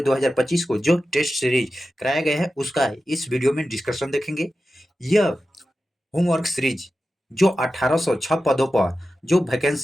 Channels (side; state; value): both; normal; correlation 0.93